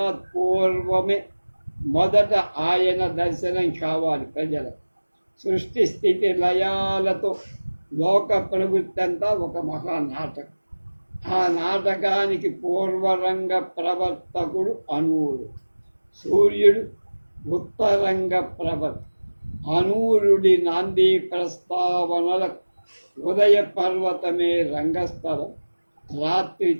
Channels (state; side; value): inverted; both; correlation -1.00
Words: మొదట ఆయన దర్శనం కావాలి ప్రజలకు. సృష్టి స్థితి లయాలతో లోక ప్రవృత్తి అంతా ఒక మహానాటకం. ఆ నాటకానికి పూర్వరంగ ప్రవర్తకుడు అనూరుడు. సూర్యుడు ఉత్తరంగ ప్రవర్త. అనూరుడి నాంది ప్రస్తావనలకు ఉదయ పర్వతమే రంగస్థలం, రాత్రి